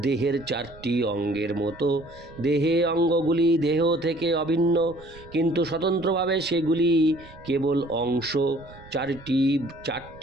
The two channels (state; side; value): noise; right; rumble, 21 dB below the sound